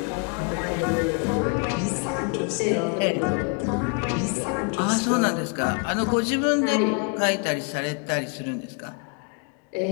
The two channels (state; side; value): quieter; right; 35.9 dB